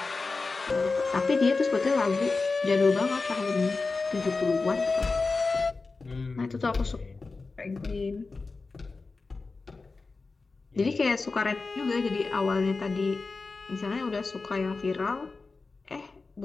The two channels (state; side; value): quieter; right; 4.0 dB